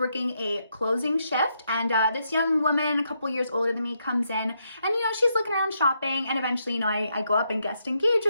a closing shift, and this young woman, a couple years older than me, comes in, and you know, she's looking around shopping, and eventually, you know, I go up and guest engage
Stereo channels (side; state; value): both; inverted; correlation -0.79